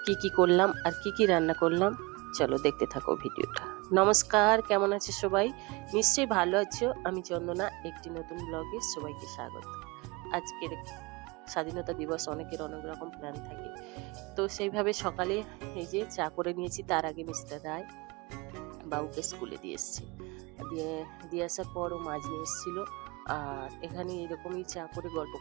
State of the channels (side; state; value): left; quieter; 25.7 dB